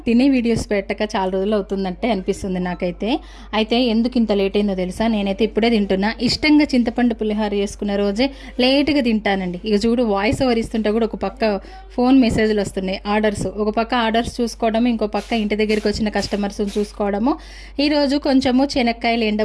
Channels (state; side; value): identical; both; correlation 1.00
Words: తినే వీడియోస్ పెట్టక చాలా రోజులు అవుతుందంటే అనిపిస్తుంది నాకైతే. అయితే ఎందుకు ఇంత లేట్ అయిందో తెలుసా? నేనైతే ఇప్పుడే తింటున్నా. ఇష్టంగా చింతపండు పులిహోర చేసుకున్న రోజే లేట్గా తింటానండి. ఇక చూడు, వాయిస్ ఓవర్ ఇస్తుంటే కూడా ఒక పక్క ఫోన్ మెసేజ్లు వస్తున్నాయి, ఆర్డర్స్. ఒక పక్క ఆర్డర్స్ చూసుకోవడము, ఇంకో పక్క ఇంటి దగ్గరికి వచ్చిన కస్టమర్స్ని చూసుకోవడము. ఈరోజు కొంచెము శనక్కాయలు